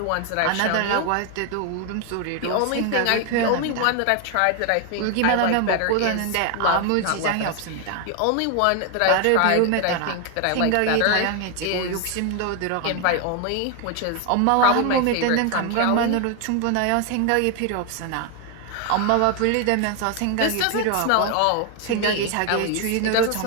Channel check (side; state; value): both; different; correlation 0.01